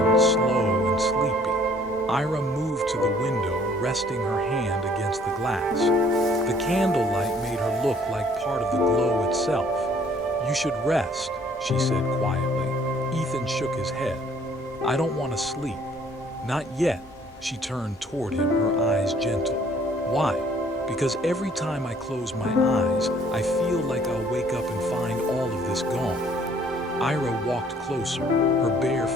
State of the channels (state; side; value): normal; both; correlation 0.59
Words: slow and sleepy. Ira moved to the window, resting her hand against the glass. The candlelight made her look like part of the glow itself. You should rest, she said quietly. Ethan shook his head. I don't want to sleep. Not yet. She turned toward him, her eyes gentle. Why? Because every time I close my eyes, I feel like I'll wake up and find all of this gone. Ira walked closer, her bare